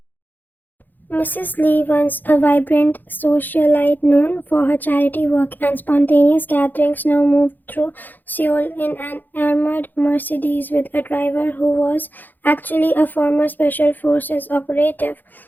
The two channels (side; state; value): right; late; 0.087 ms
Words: Mrs. Lee, once a vibrant socialite known for her charity work and spontaneous gatherings, now moved through Seoul in an armored Mercedes with a driver who was actually a former Special Forces operative.